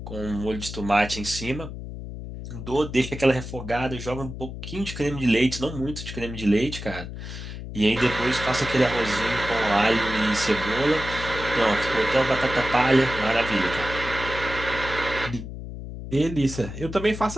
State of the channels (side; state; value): left; noise; hum, 9 dB below the sound